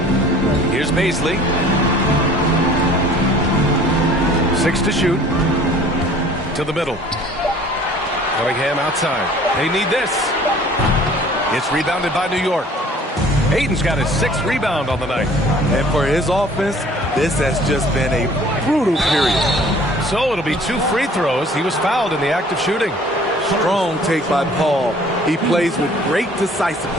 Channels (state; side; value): normal; both; correlation 0.51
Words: Here's Baisley. 6 to shoot. To the middle. Cunningham outside. They need this. It's rebounded by New York. Ayton's got his 6th rebound on the night. And for his offense, this has just been a brutal period. So it'll be 2 free throws. He was fouled in the act of shooting. Strong take by Paul. He plays with great